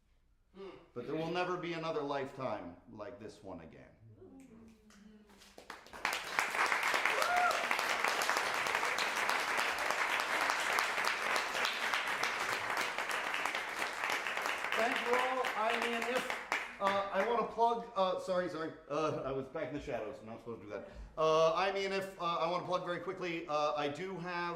But there will never be another lifetime like this one again. thank you all. I mean, if I want to plug, sorry, I was back in the shadows. I'm not supposed to do that. I mean, if I want to plug very quickly, I do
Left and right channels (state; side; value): identical; both; correlation 1.00